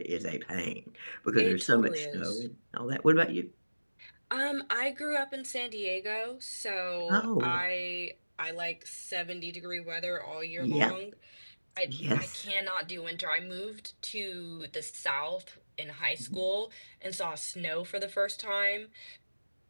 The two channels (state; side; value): inverted; both; correlation -1.00